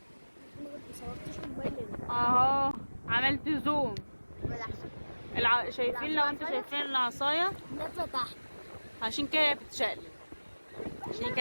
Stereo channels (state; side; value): inverted; both; correlation -1.00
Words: صورتش موبايلي. اهو عملت زوم. ولا احسن شايفين؟ لو انتوا شايفين العصاية نازلة تحت. عشان كده هي بتتشقلب، عشان